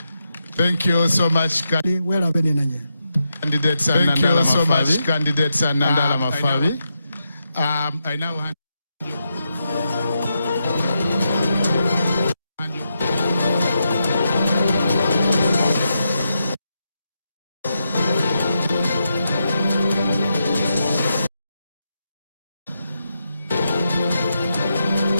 Thank you so much, candidates. Thank you so much, candidates and Nandala Mafabi. I now hand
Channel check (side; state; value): both; inverted; correlation -0.84